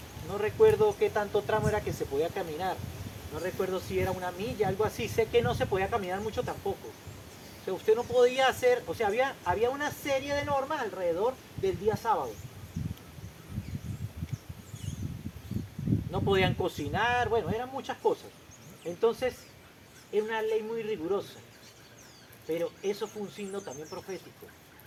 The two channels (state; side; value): identical; both; correlation 1.00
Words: No recuerdo qué tanto tramo era que se podía caminar. No recuerdo si era una milla, algo así. Sé que no se podía caminar mucho tampoco. O sea, usted no podía hacer, o sea, había una serie de normas alrededor del día sábado. No podían cocinar, bueno, eran muchas cosas. Entonces, era una ley muy rigurosa. Pero eso fue un signo también profético.